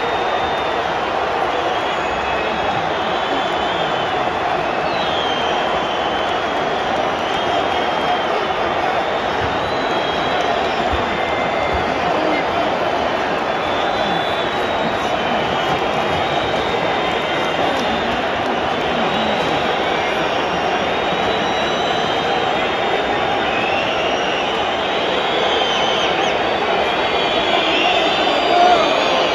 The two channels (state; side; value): identical; both; correlation 1.00